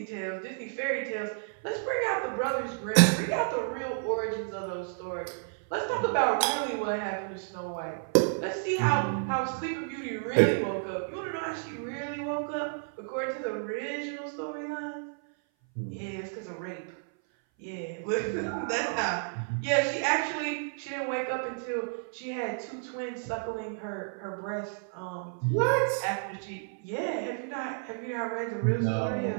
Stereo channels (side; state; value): left; silent; 56 dB below the other